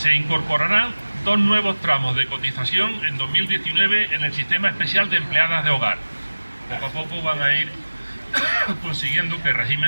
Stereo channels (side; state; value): both; inverted; correlation -1.00